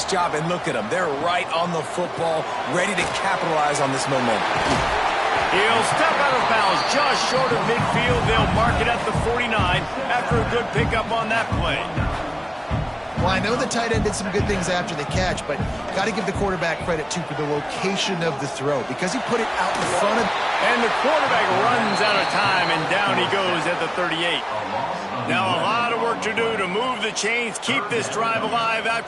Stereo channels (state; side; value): identical; both; correlation 1.00